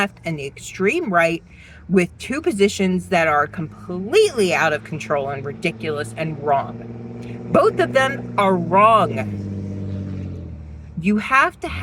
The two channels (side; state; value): both; identical; correlation 1.00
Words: and the extreme right with two positions that are completely out of control and ridiculous and wrong. Both of them are wrong. You have to